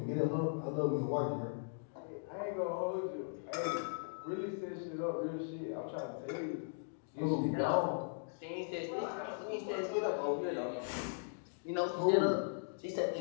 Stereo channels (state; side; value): silent; right; digital silence